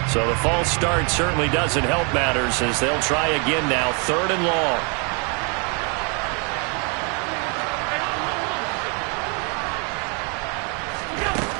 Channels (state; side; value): quieter; left; 35.2 dB